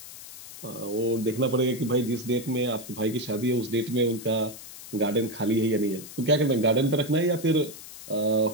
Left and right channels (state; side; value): noise; left; hiss, 14 dB below the sound